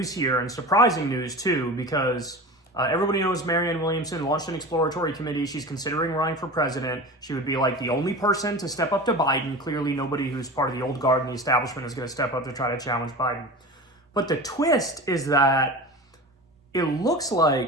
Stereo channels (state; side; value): normal; both; correlation 0.32